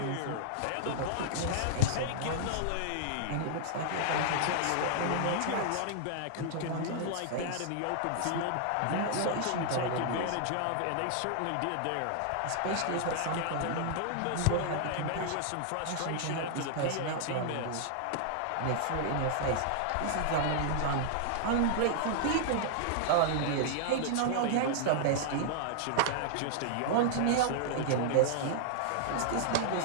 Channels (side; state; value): both; different; correlation -0.01